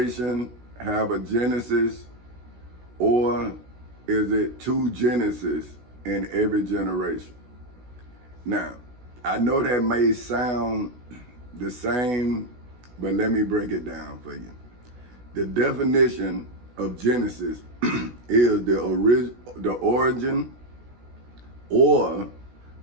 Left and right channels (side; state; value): left; late; 16 ms